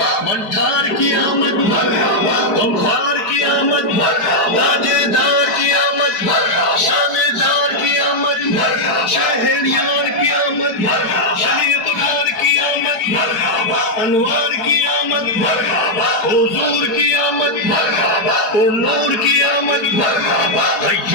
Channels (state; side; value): late; right; 5.0 ms